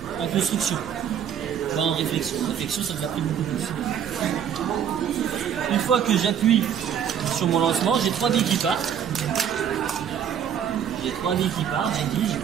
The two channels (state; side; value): quieter; left; 8.7 dB